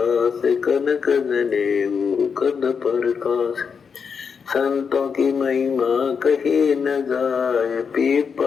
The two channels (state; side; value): quieter; right; 6.2 dB